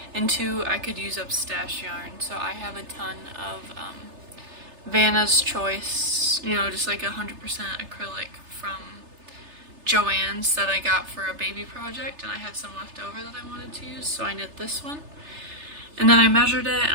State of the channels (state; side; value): late; left; 3.3 ms